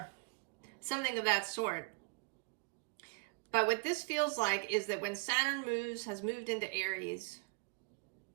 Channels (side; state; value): left; quieter; 37.7 dB